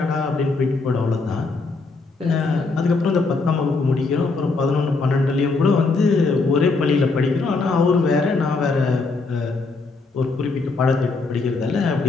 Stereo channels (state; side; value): quieter; right; 3.9 dB